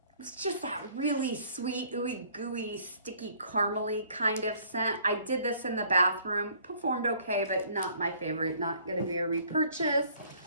It's just that really sweet, ooey gooey, sticky, caramely kind of scent. I did this in the bathroom. Performed okay, but not my favorite. Not going to be a repurchase.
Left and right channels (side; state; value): both; inverted; correlation -0.58